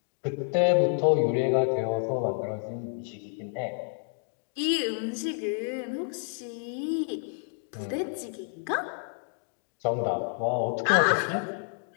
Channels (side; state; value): right; silent; 58 dB below the other